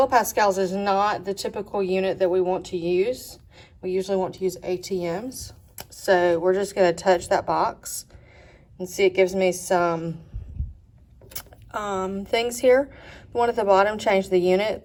is not the typical unit that we want to use. We usually want to use ATMs. So we're just going to touch that box and see it gives me some things here. The one at the bottom, change the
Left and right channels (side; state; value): both; identical; correlation 1.00